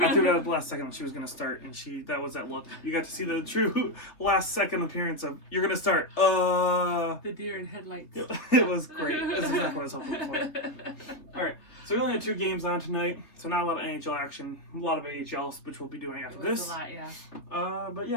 threw it out at the last second when she was going to start, and that was that look. You got to see the true last second appearance of, you're going to start. The deer in headlights. It was great. That's exactly what I was hoping for. All right. So we only had 2 games on tonight, so not a lot of NHL action. A lot of AHL, which we'll be doing after this. A lot, yeah. But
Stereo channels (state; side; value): late; right; 3.2 ms